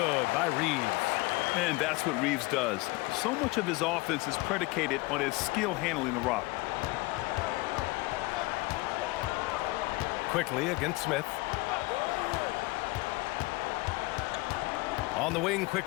by Reeves. And that's what Reeves does. So much of his offense is predicated on his skill handling the rock. Quickly against Smith. On the wing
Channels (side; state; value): right; quieter; 23.1 dB